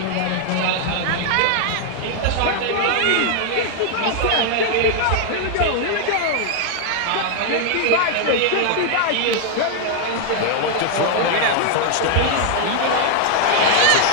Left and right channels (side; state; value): both; different; correlation 0.00